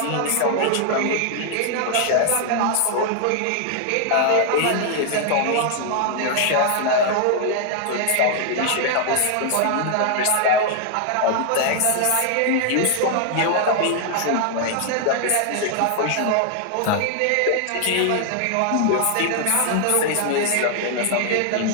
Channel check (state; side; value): different; both; correlation 0.00